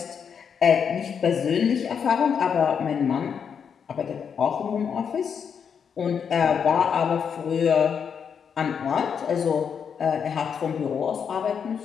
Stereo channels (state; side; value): quieter; right; 7.1 dB